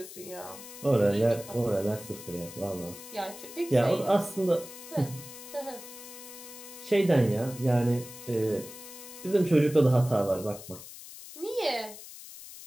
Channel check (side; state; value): left; noise; hiss, 14 dB below the sound